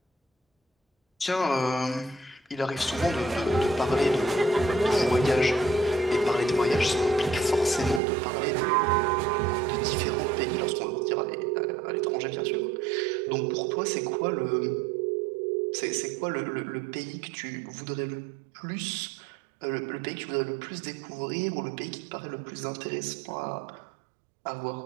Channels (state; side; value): drops out; left; at 8.0 s